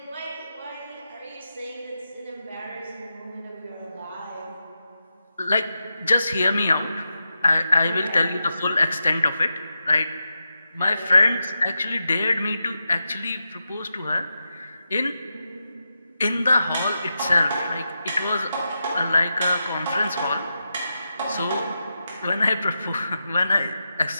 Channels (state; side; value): inverted; both; correlation -0.89